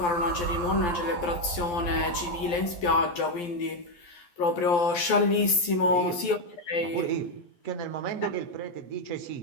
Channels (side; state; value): right; late; 12 ms